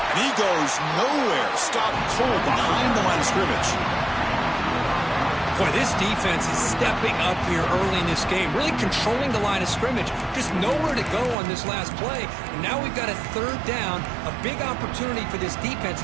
And he goes nowhere. Stopped cold behind the line of scrimmage. Boy, this defense is stepping up here early in this game, really controlling the line of scrimmage. Just nowhere to go on this last play. And now we've got a 3rd down, a big opportunity for this defense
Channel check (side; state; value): left; drops out; at 11.4 s